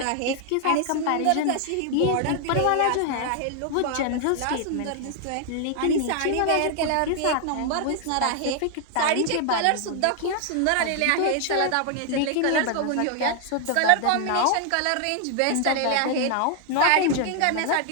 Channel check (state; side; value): different; both; correlation 0.00